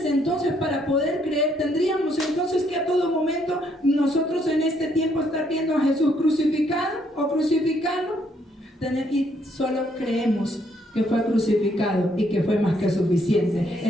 entonces para poder creer tendríamos entonces que a todo momento nosotros en este tiempo estar viendo a Jesús crucificado o crucificado? Y solo creemos que fue crucificado y que fue más que suficiente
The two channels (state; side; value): normal; both; correlation 0.70